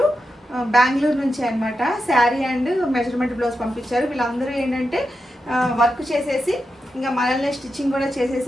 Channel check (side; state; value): both; normal; correlation 0.88